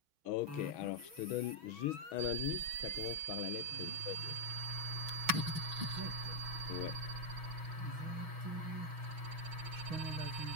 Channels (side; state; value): left; late; 6.2 ms